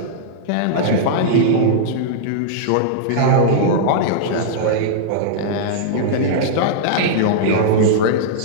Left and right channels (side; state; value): both; different; correlation -0.02